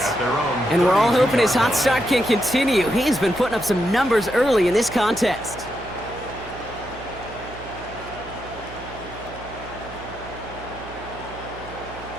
And we're all hoping his hot start can continue. He's been putting up some numbers early in this contest.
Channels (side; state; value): right; noise; hum, 16 dB below the sound